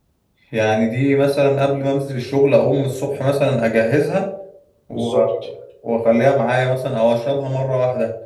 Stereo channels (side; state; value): both; identical; correlation 1.00